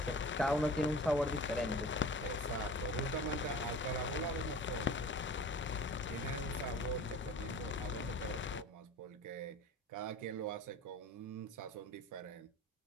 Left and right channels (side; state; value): both; normal; correlation 0.40